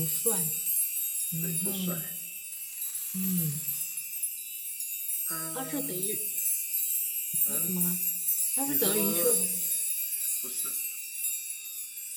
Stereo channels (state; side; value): identical; both; correlation 1.00